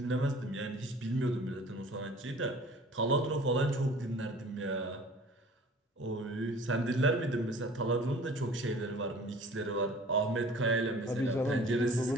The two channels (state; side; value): normal; both; correlation 0.47